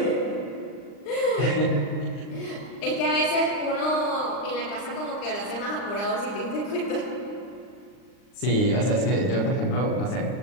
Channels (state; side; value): late; right; 39 ms